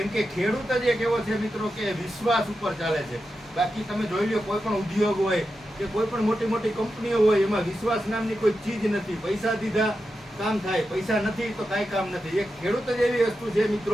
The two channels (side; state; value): both; normal; correlation 0.89